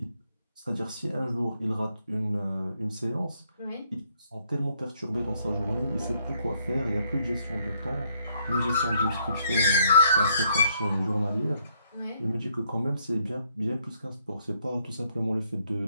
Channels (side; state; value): both; inverted; correlation -0.70